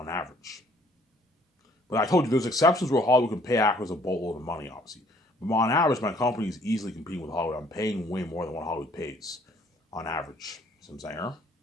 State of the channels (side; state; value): both; normal; correlation 0.61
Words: average. But I told you there's exceptions where Hollywood can pay actors a boatload of money, obviously. But on average, my company is easily competing with Hollywood. I'm paying way more than what Hollywood pays on average. See what I'm saying?